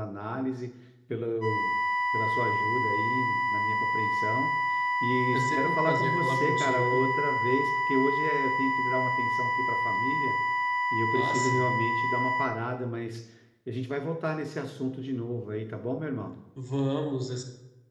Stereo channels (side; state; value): both; identical; correlation 1.00